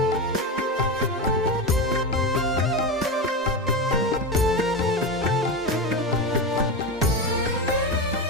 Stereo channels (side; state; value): both; normal; correlation 0.18